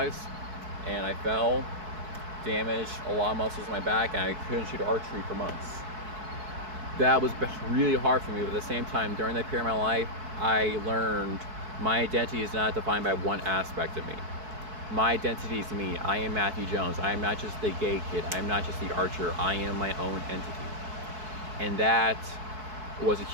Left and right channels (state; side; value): late; left; 4.6 ms